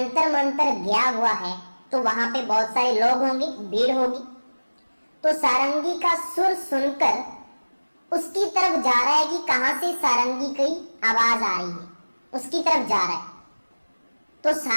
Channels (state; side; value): inverted; both; correlation -1.00